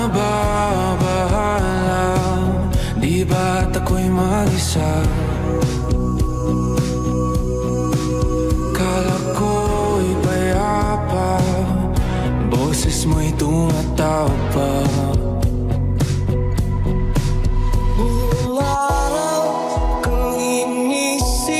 Di ba't ako'y mag-isa? Kala ko'y payapa, boses mo'y tumatawag pa. Buong araw kang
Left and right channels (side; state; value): both; identical; correlation 1.00